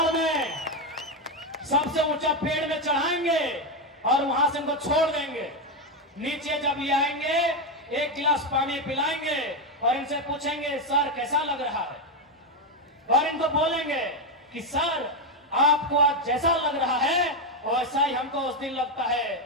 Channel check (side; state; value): both; normal; correlation 0.08